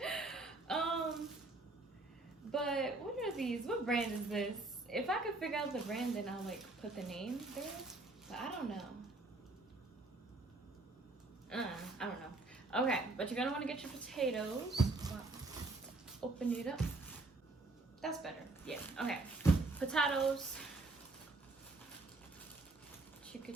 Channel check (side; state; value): left; quieter; 3.1 dB